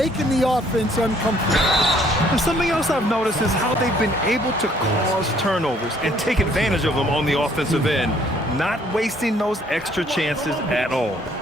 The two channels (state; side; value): normal; both; correlation 0.62